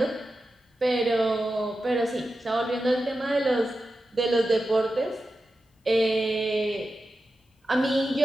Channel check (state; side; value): normal; both; correlation 0.91